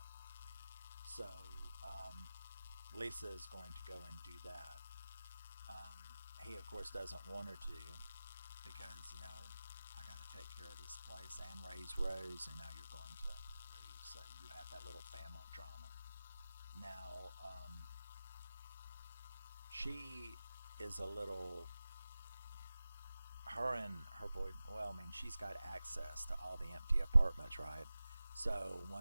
So Lisa is going to go and do that. He, of course, doesn't want her to, because, you know, I got to take care of this place and raise Rose, and now you're going to leave. So you have that little family drama. Now, she is a little, her and her boy, well, I mean, she's got access to all the empty apartments, right? So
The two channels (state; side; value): inverted; both; correlation -0.96